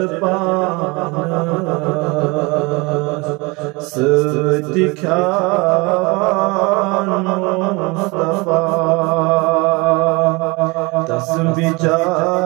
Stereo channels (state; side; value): quieter; left; 26.1 dB